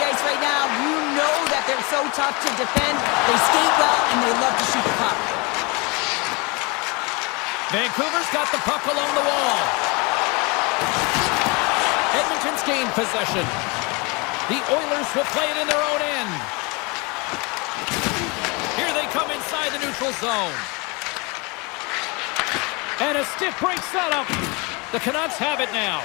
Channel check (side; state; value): right; quieter; 28.5 dB